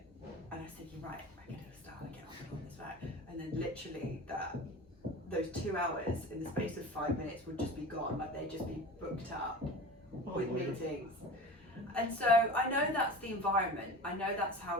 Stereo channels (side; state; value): both; normal; correlation 0.34